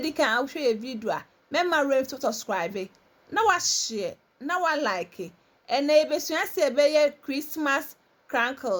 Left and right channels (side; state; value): both; identical; correlation 1.00